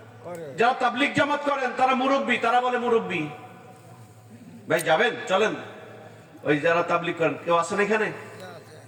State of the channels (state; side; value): identical; both; correlation 1.00